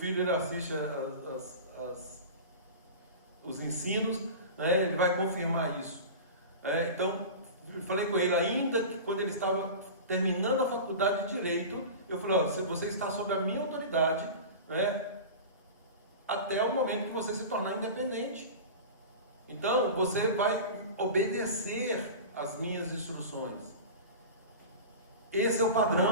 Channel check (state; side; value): inverted; both; correlation -0.31